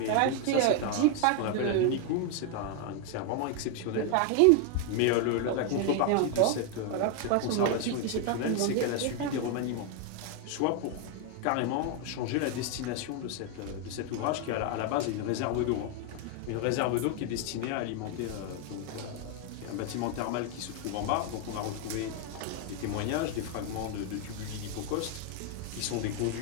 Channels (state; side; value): different; both; correlation 0.01